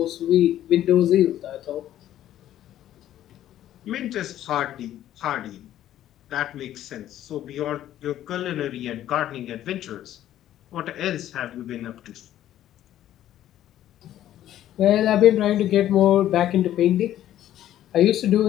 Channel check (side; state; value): right; quieter; 12.3 dB